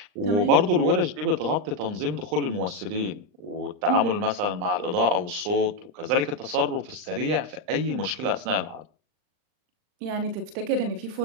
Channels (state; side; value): late; left; 39 ms